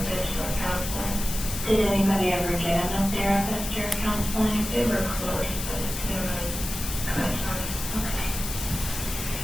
or counseling. Did anybody ever get him a therapist or counseling? They were close, but it's been really kind of time. Okay.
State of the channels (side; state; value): left; noise; hiss, 6 dB below the sound